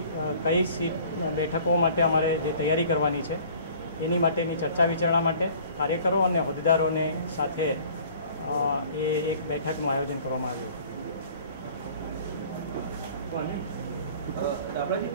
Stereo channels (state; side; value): inverted; both; correlation -0.50